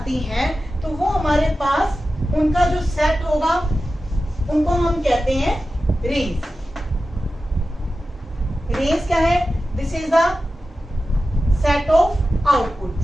हैं तो वो हमारे पास उनका जो सेट होगा उनको हम कहते हैं रेंज। रेंज क्या है? This is the set of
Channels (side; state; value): both; normal; correlation 0.93